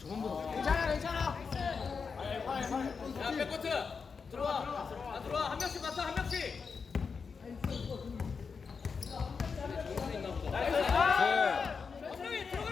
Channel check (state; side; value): quieter; right; 5.4 dB